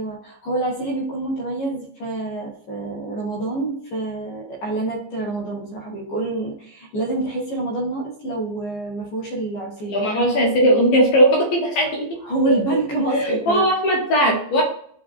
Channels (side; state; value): right; late; 15 ms